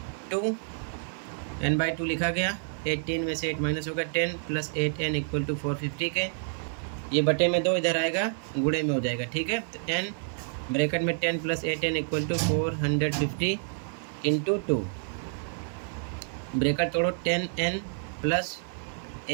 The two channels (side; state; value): left; silent; 59 dB below the other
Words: 2 n/2 लिखा गया, 18 में से 8 माइनस होगा 10 प्लस 8n इक्वल टू 450 के। ये बटे में 2 इधर आएगा, गुणे में हो जाएगा, ठीक है। तो n ब्रैकेट में 10 plus 8n equal to 450 into 2, bracket तोड़ो 10n प्लस